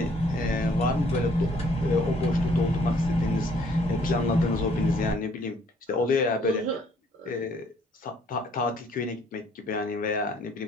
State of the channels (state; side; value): normal; both; correlation 0.62